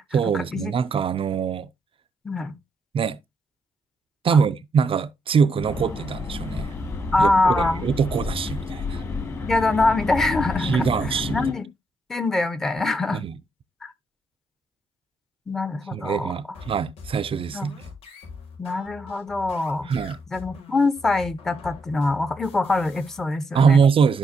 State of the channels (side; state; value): both; normal; correlation 0.78